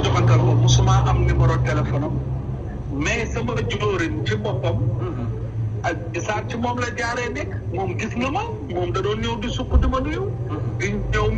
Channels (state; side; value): identical; both; correlation 1.00